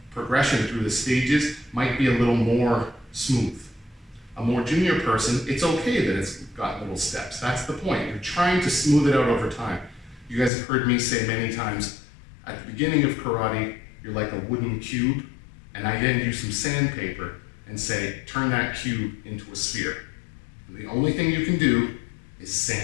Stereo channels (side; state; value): right; drops out; at 10.5 s